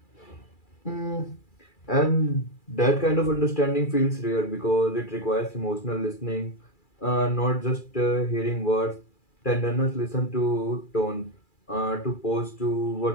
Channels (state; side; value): late; right; 2.4 ms